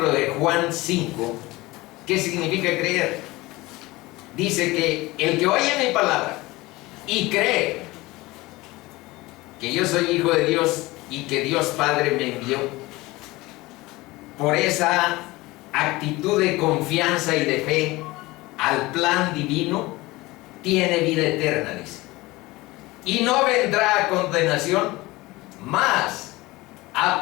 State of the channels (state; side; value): quieter; right; 20.6 dB